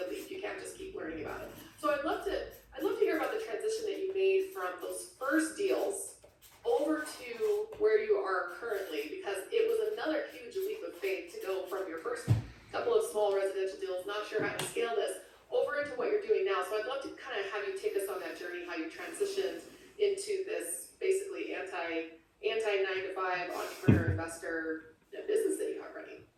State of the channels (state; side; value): identical; both; correlation 1.00